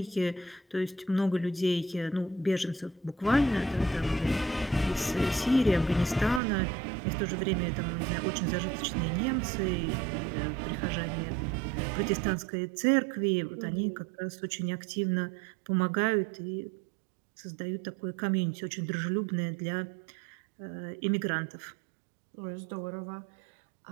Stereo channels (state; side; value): drops out; left; at 6.4 s